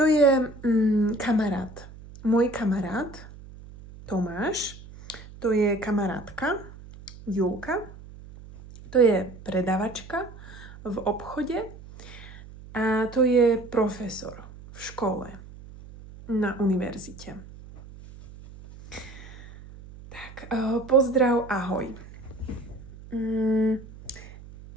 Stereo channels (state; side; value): noise; right; hum, 17 dB below the sound